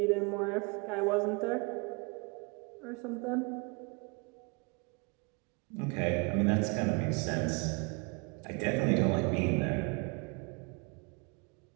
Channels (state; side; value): quieter; left; 31.2 dB